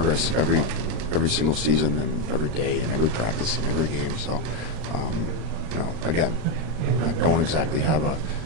every single season and every day and every practice and every game. So, again, I don't exactly have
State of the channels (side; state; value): left; late; 38 ms